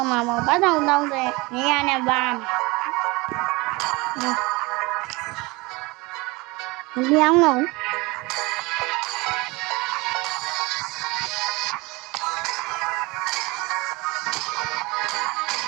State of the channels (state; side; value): quieter; left; 24.1 dB